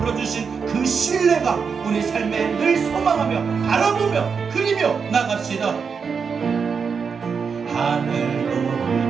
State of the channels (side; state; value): left; quieter; 5.9 dB